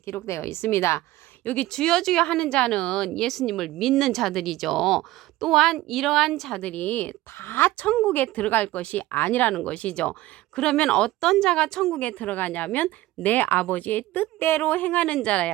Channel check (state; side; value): quieter; left; 16.8 dB